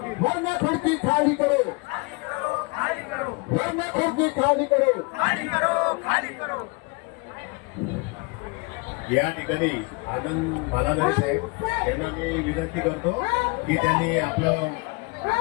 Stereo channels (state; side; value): quieter; right; 29.3 dB